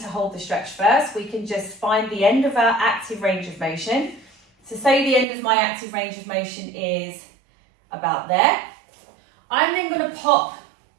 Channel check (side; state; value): left; drops out; at 5.2 s